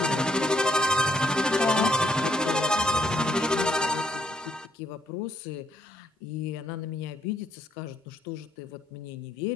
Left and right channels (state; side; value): normal; both; correlation 0.71